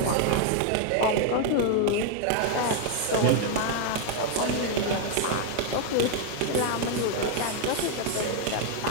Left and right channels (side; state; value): both; different; correlation 0.00